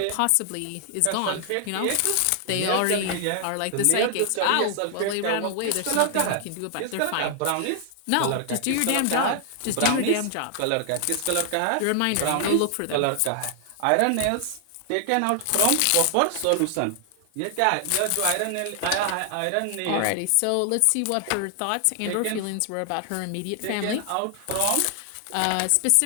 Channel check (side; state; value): both; different; correlation 0.00